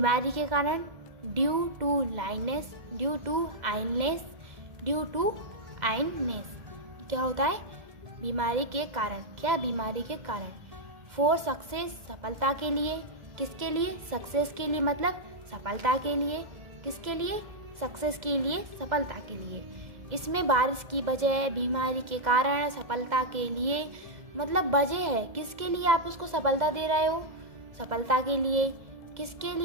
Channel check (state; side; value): late; left; 2.0 ms